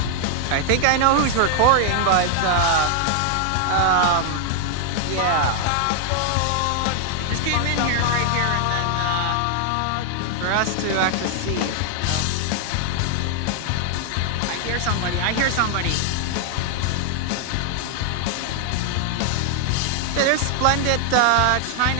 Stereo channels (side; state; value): both; different; correlation 0.00